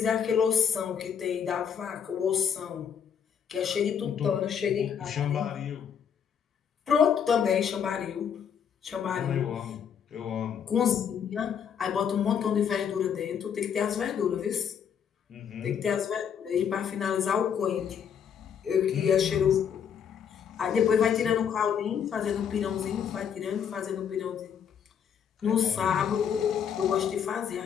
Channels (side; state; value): right; quieter; 7.8 dB